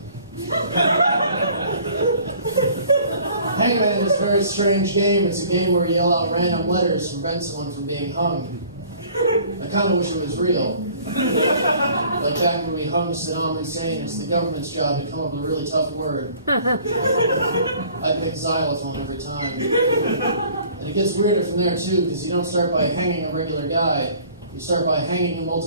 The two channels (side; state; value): both; inverted; correlation -0.52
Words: Hangman is a very strange game. It's a game where you yell out random letters to prevent someone from being hung. I kind of wish it was real. Like back when we hung Saddam Hussein, it's the government's job to come up with a really tough word. I pick xylophone every time. And it gets weirder from there too, because you don't start by hanging a regular guy. You start by hanging a